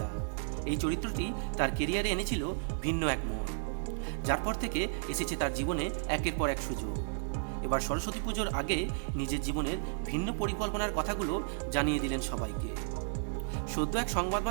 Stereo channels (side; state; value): left; silent; 56 dB below the other